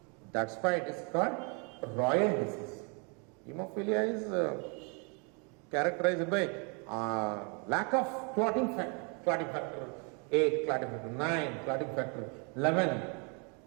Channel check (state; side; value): quieter; left; 34.8 dB